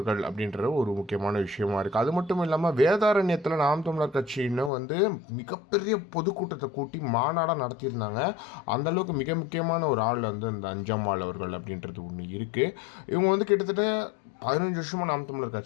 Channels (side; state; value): right; drops out; at 4.7 s